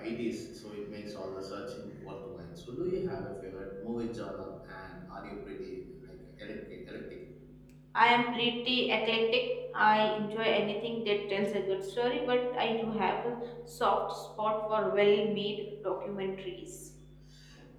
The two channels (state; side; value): identical; both; correlation 1.00